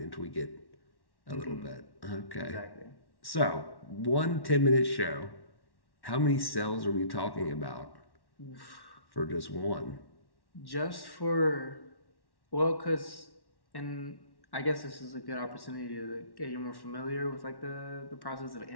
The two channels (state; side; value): late; right; 1.1 ms